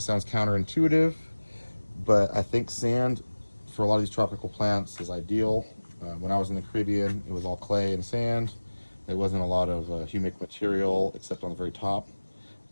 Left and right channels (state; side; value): inverted; both; correlation -1.00